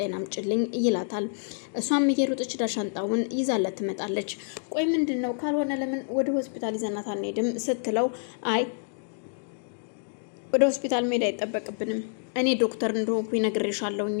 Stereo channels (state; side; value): silent; right; digital silence